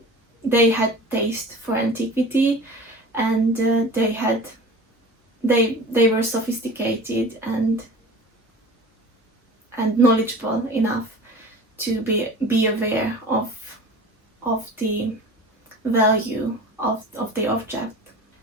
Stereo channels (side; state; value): both; normal; correlation 0.39